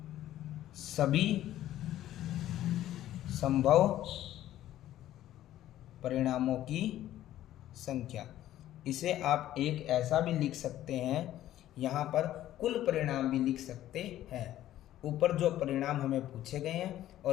सभी संभव परिणामों की संख्या। इसे आप एक ऐसा भी लिख सकते हैं, यहाँ पर कुल परिणाम भी लिख सकते हैं। ऊपर जो परिणाम हमें पूछे गए हैं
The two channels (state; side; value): quieter; right; 13.2 dB